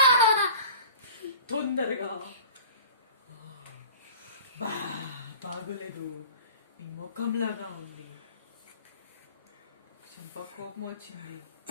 తొందరగా. బాగోలేదు, నీ ముఖంలాగా ఉంది. చెంప కోపం వచ్చింది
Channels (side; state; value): both; inverted; correlation -0.42